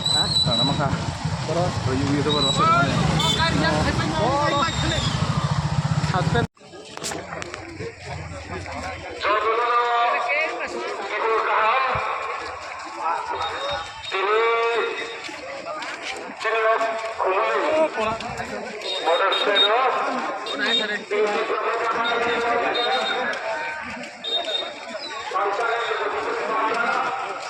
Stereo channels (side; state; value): both; identical; correlation 1.00